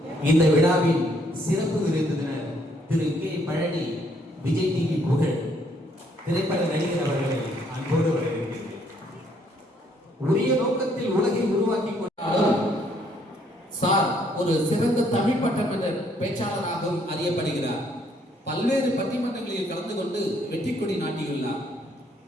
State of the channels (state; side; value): normal; both; correlation 0.68